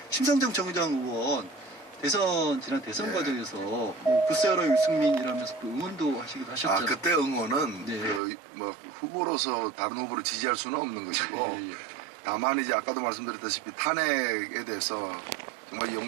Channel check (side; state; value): left; drops out; at 8.2 s